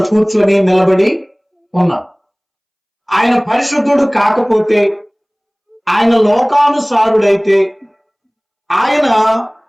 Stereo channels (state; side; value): identical; both; correlation 1.00